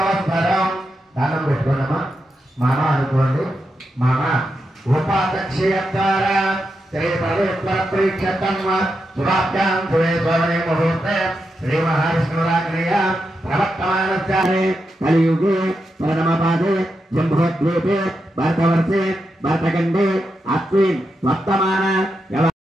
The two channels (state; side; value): normal; both; correlation 0.86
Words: దానం పెట్టుకోండమ్మా. మామ అనుకోండి. మామ ఉపాధ్యక్షం ద్వారా శ్రీ పవిత్ర ప్రీక్షతమ్మ శుభాభ్యాం శుభే స్వర్ణే ముహూర్తే శ్రీ మహావిష్ణురాగ్నేయ ప్రవర్తమానస్యామి కలియుగే పరమపాదే జంబోద్వీపే భరతవర్షే భరతఖండే అస్మిన్ వర్తమాన